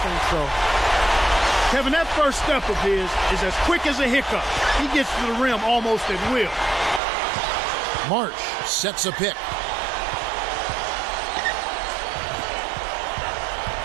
think so. Kevin, that first step of his is as quick as a hiccup. He gets to the rim almost at will. Marsh sets a pick.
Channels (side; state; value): left; drops out; at 7.0 s